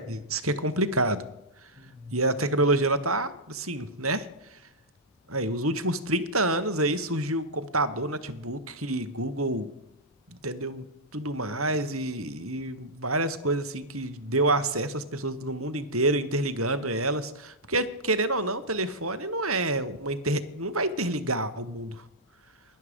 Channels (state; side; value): normal; both; correlation -0.09